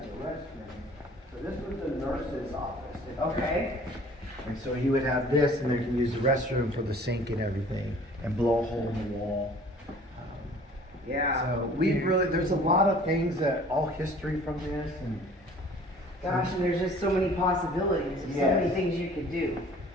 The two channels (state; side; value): normal; both; correlation 0.50